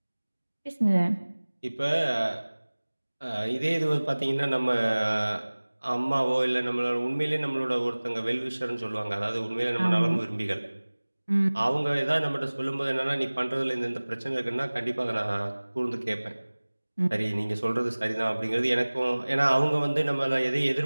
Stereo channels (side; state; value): both; inverted; correlation -1.00